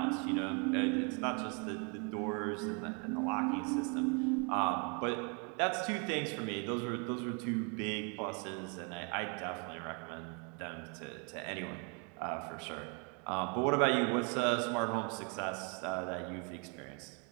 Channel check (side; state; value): left; quieter; 35.5 dB